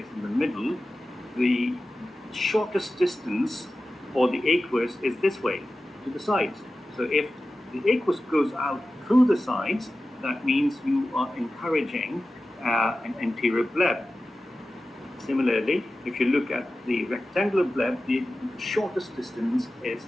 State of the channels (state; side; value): normal; both; correlation 0.94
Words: in the middle, the shortest distance for the aqueous is this way, to the sides. So if the aqueous goes out through the sides, that means you are encouraging an anterior bleb. Similarly, if you look at the rectangular bleb, the shortest distance is